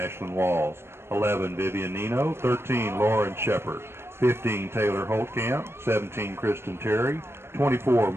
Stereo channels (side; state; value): left; late; 0.12 ms